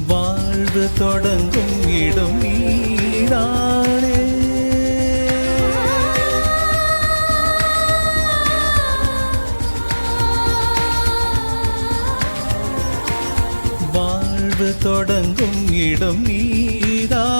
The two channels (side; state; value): both; inverted; correlation -1.00